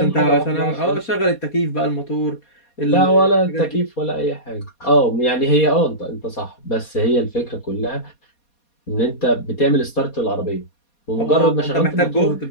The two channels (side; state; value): right; late; 4.2 ms